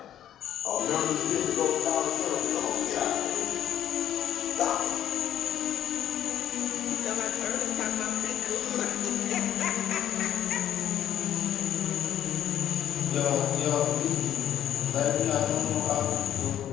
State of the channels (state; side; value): quieter; right; 11.0 dB